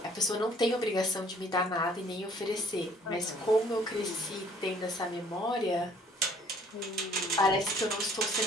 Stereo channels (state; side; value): normal; both; correlation 0.58